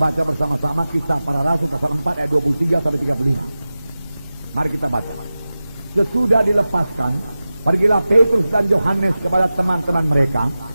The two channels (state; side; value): inverted; both; correlation -0.95